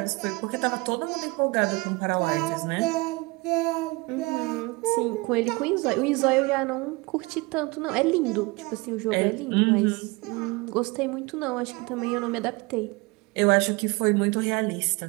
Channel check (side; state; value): left; quieter; 24.8 dB